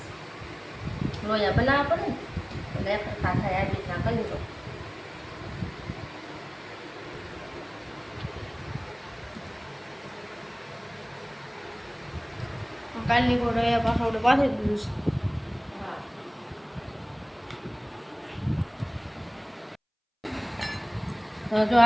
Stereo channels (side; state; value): both; identical; correlation 1.00